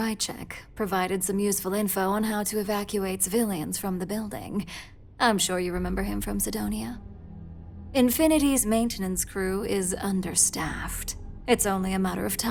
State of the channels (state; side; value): identical; both; correlation 1.00